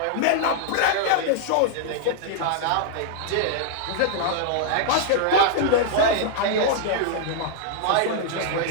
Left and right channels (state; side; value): different; both; correlation -0.01